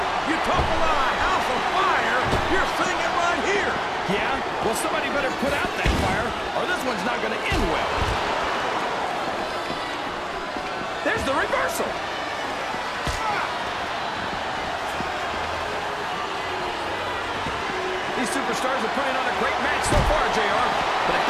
You talk about a house of fire, you're seeing it right here! Yeah? Well, somebody better put out that fire, or this one's not gonna end well. There's the reversal! These superstars are putting on a great match so far, JR. But if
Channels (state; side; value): identical; both; correlation 1.00